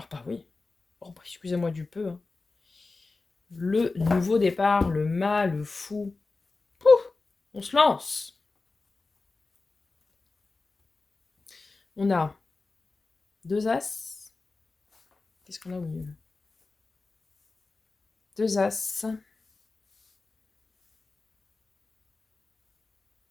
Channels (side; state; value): right; quieter; 3.7 dB